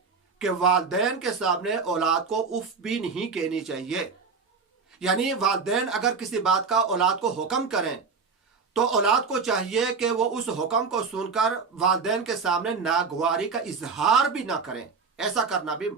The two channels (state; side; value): quieter; left; 5.0 dB